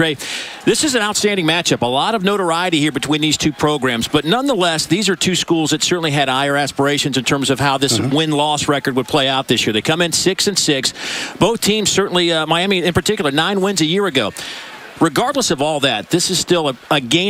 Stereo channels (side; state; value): both; identical; correlation 1.00